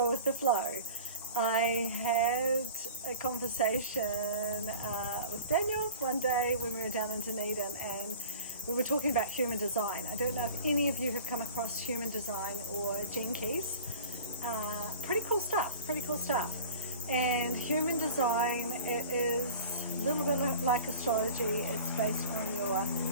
with the flow. I had a conversation with Daniel one day when we were down in Dunedin, and we were talking about human design. I don't know if any of you have come across human design or Gene Keys. Pretty cool stuff. And human design, it is a little bit like astrology. It's based on your,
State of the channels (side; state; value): both; inverted; correlation -0.36